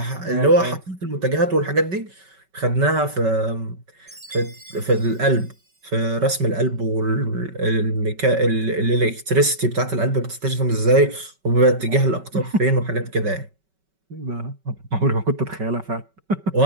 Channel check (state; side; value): late; left; 5.3 ms